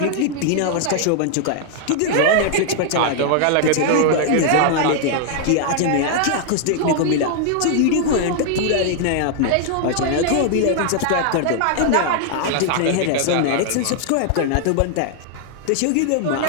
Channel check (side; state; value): both; different; correlation 0.00